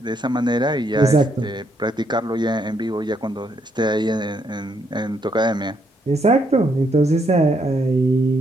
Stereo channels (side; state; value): both; normal; correlation 0.74